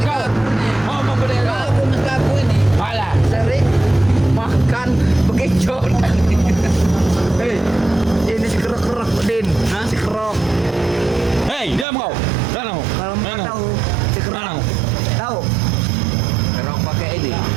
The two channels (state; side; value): drops out; left; at 11.9 s